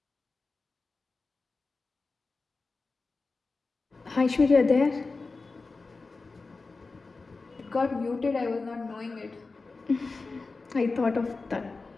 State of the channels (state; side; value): quieter; right; 3.9 dB